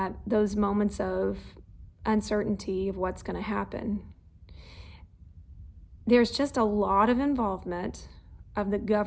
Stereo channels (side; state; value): both; identical; correlation 1.00